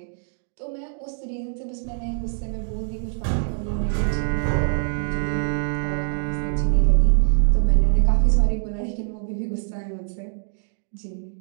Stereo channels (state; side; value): silent; left; digital silence